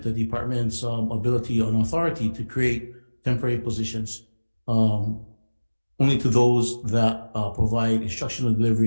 the department's ability and authority to create temporary positions only to those that provide instructional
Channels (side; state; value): both; inverted; correlation -1.00